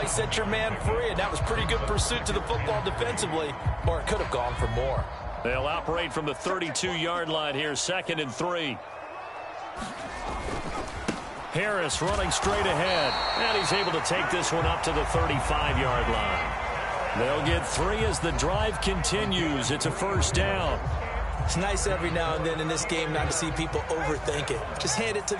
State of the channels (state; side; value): identical; both; correlation 1.00